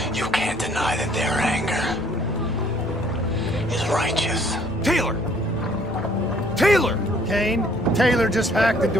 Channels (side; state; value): both; normal; correlation 0.60